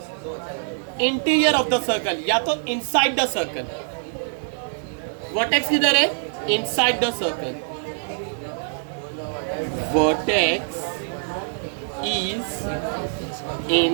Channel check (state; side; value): silent; left; digital silence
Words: इंटीरियर ऑफ द सर्कल या तो इनसाइड द सर्कल। वर्टेक्स किधर है? Inside the circle. Vertex is